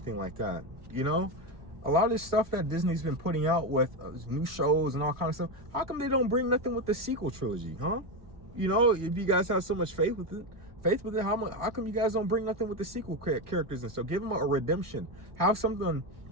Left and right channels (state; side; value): late; left; 1.5 ms